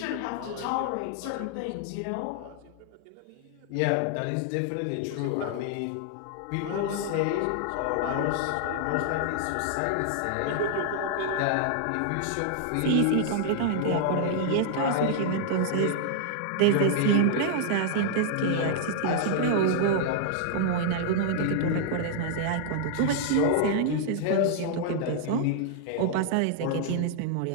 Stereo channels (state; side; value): different; both; correlation -0.01